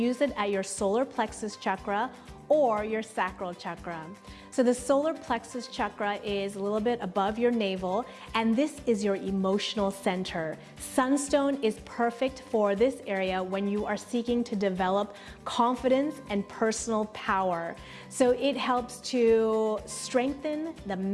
it at your solar plexus chakra or your sacral chakra. So the solar plexus chakra is a little bit above your navel, and this is your emotional center. Sunstone is perfect for this area when you are seeking to develop confidence and personal power. So it helps to strengthen the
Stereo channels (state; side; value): identical; both; correlation 1.00